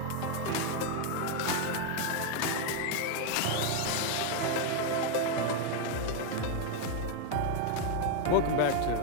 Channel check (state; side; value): different; both; correlation 0.01